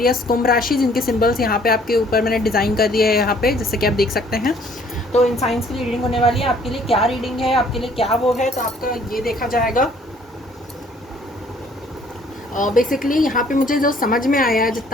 कुंभ राशि, जिनके सिंबल्स यहाँ पे आपके ऊपर मैंने डिज़ाइन कर दिए है यहाँ पे, जैसे कि आप देख सकते हैं। तो इन साइंस की रीडिंग होने वाली है। आपके लिए क्या रीडिंग है, आपके लिए क्या वो है, तो आपका ये देखा जाएगा। बेसिकली यहाँ पे मुझे जो समझ में आया है,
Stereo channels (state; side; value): normal; both; correlation 0.59